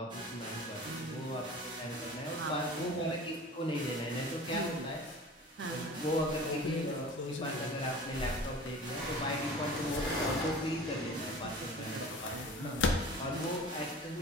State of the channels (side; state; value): both; normal; correlation 0.41